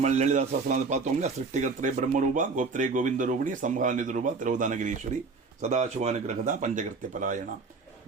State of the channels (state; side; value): quieter; left; 4.3 dB